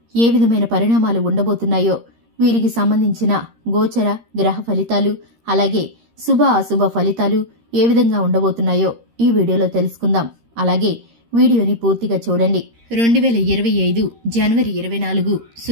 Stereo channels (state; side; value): late; left; 13 ms